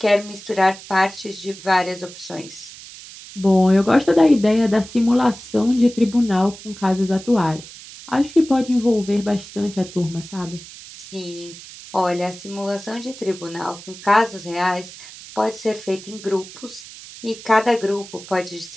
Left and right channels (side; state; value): right; noise; hiss, 16 dB below the sound